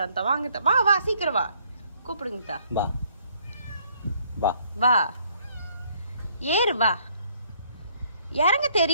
வாங்க வா வா சீக்கிரம் வா. கூப்பிடுங்க வா வா வா. ஏறு வா. இறங்க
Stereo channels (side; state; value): both; inverted; correlation -0.65